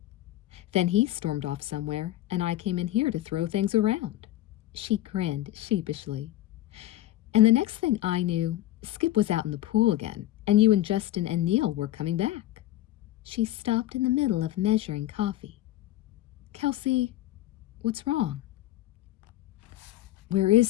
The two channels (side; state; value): right; quieter; 14.6 dB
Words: Then he stormed off somewhere, and I came in here to throw things around." She grinned sheepishly. "And the next thing I knew, Skip was out in the pool again, and you and Justin and Neil were coming back." She stopped in the middle of measuring coffee. "Kelsey, what's wrong?" "Where